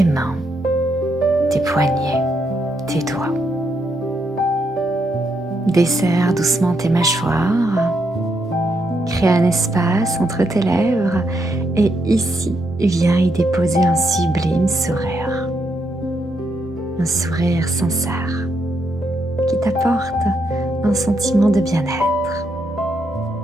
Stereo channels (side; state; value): both; normal; correlation 0.78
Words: mains, tes poignets, tes doigts. Desserre doucement tes mâchoires, crée un espace entre tes lèvres et ici, viens y déposer un sublime sourire. Un sourire sincère qui t'apporte un sentiment de bien-être.